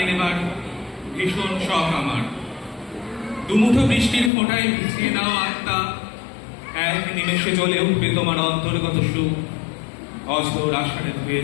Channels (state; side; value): drops out; right; at 4.3 s